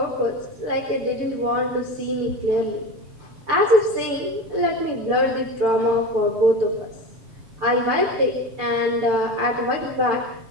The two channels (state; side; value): late; left; 6.9 ms